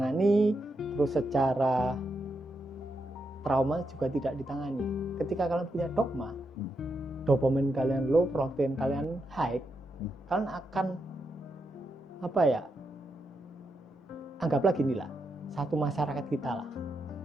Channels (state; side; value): normal; both; correlation 0.84